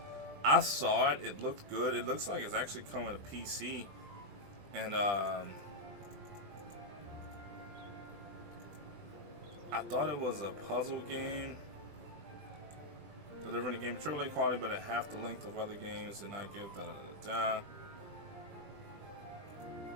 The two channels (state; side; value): late; left; 20 ms